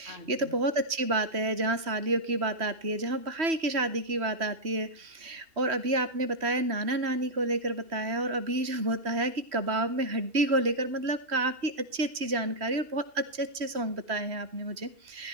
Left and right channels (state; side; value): late; left; 3.1 ms